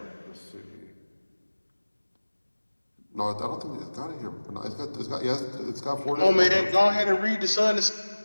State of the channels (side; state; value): both; inverted; correlation -1.00